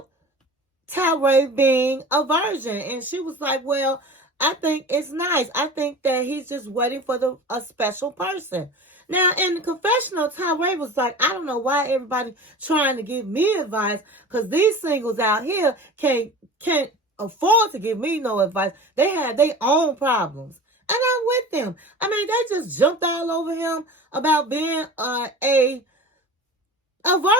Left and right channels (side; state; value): both; normal; correlation 0.36